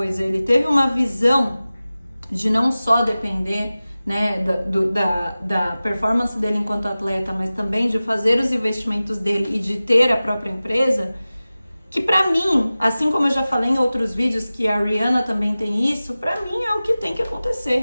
Ele teve uma visão de não só depender, né, da performance dele enquanto atleta, mas também de fazer os investimentos dele e de ter a própria empresa, que pra mim, assim como eu já falei em outros vídeos que a Rihanna também tem isso, pra mim é o que tem que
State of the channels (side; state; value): both; inverted; correlation -0.96